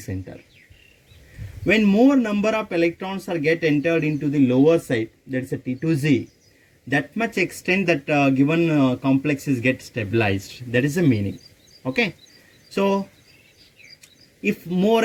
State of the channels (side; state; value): both; identical; correlation 1.00